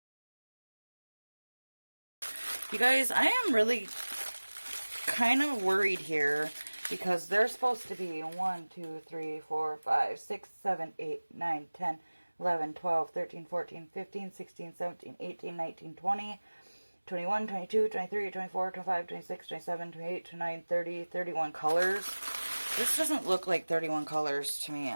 You guys, I am really kind of worried here because there's supposed to be 1, 2, 3, 4, 5, 6, 7, 8, 9, 10, 11, 12, 13, 14, 15, 16, 17, 18, 19, 20... 21, 22, 23, 24, 25, 26, 27, 28, 29, 30, 31 colors. This doesn't look like 31 colors to me.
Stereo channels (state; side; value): inverted; both; correlation -1.00